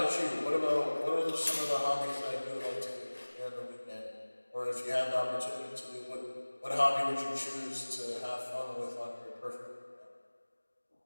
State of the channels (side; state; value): both; inverted; correlation -1.00